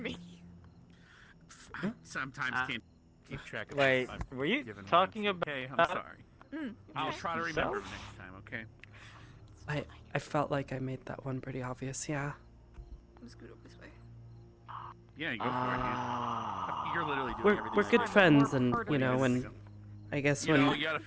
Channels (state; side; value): identical; both; correlation 1.00